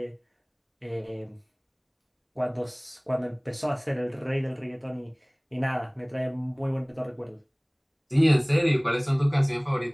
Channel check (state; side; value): identical; both; correlation 1.00